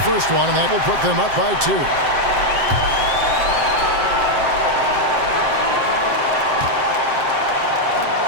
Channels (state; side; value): late; left; 7.7 ms